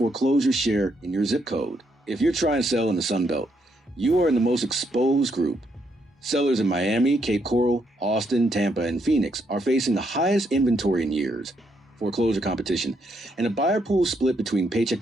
share in your zip code. If you're trying to sell in the Sun Belt, you are in the most exposed group. Sellers in Miami, Cape Coral, Austin, Tampa, and Phoenix are facing the highest inventory in years, foreclosure competition, and a buyer pool split between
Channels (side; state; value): both; normal; correlation 0.76